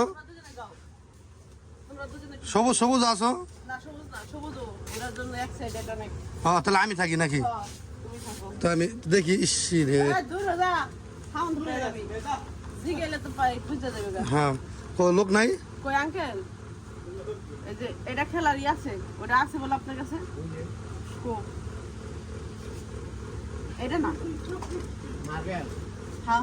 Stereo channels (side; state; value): both; identical; correlation 1.00